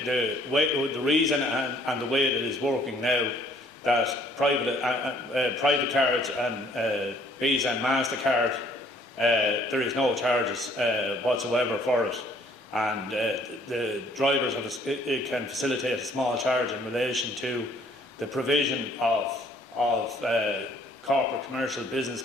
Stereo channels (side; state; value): both; normal; correlation 0.61